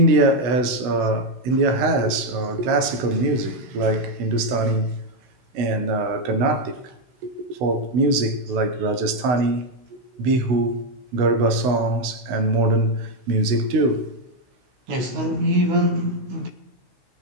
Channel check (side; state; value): left; late; 16 ms